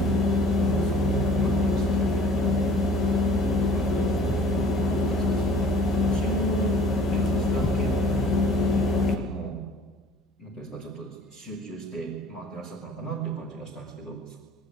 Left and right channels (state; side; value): normal; both; correlation 0.52